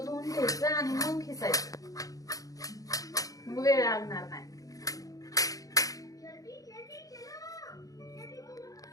धुवून घ्यायचं आणि मग खिसायचं, मग वेळ लागणार नाही.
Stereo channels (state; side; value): late; right; 0.17 ms